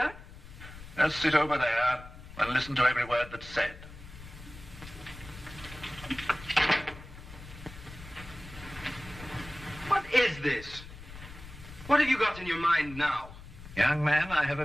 Just sit over there and listen to every word that's said. What is this? What have you got in your mind now? Young man, I have a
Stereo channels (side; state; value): left; noise; rumble, 15 dB below the sound